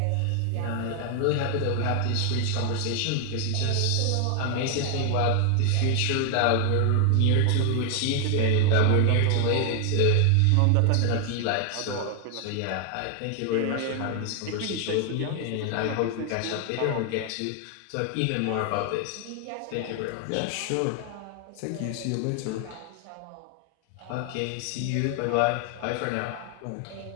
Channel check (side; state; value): both; different; correlation 0.00